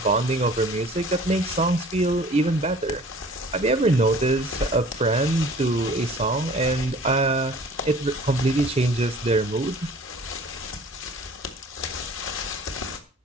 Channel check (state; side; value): normal; both; correlation 0.48